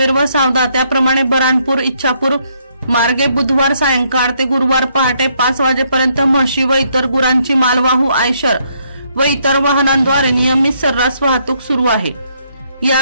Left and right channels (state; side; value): inverted; both; correlation -0.72